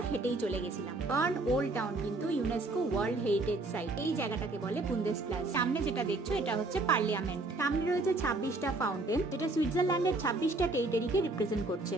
হেঁটেই চলে গেছিলাম। বার্ন ওল্ড টাউন কিন্তু ইউনেস্কো ওয়ার্ল্ড হেরিটেজ সাইট। এই জায়গাটাকে বলে বুন্দেসপ্লাস। সামনে যেটা দেখছো এটা হচ্ছে পার্লিয়ামেন্ট। সামনে রয়েছে 26টা ফাউন্টেন, যেটা সুইজারল্যান্ডের 26টা টেরিটরিকে রিপ্রেজেন্ট করছে।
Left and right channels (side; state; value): left; quieter; 3.0 dB